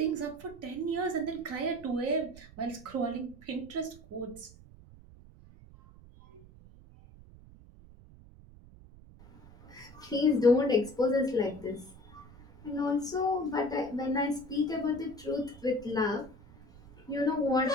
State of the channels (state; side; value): noise; right; rumble, 21 dB below the sound